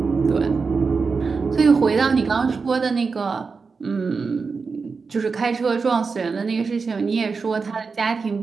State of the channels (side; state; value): left; quieter; 4.8 dB